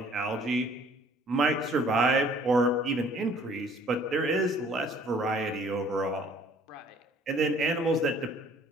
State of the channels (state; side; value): normal; both; correlation 0.56